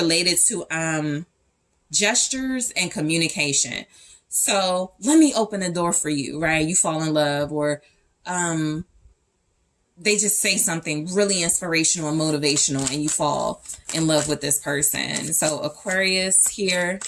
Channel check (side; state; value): both; identical; correlation 1.00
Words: to gestures and communication. So let me open the door for you, right? You fall in love, or they just say something really inspirational and motivational, and you fall in love with this person. So Aquarius here,